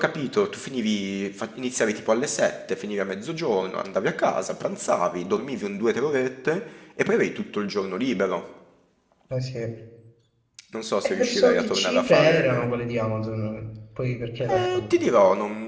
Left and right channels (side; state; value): both; identical; correlation 1.00